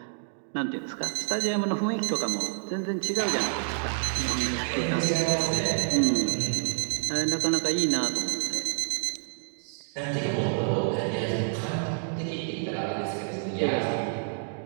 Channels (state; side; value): silent; left; digital silence